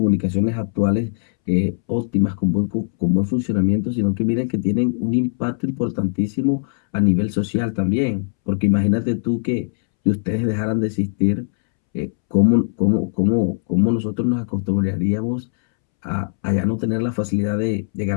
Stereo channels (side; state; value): right; silent; 66 dB below the other